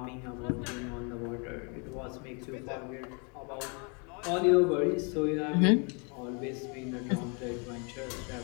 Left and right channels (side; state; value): right; quieter; 35.3 dB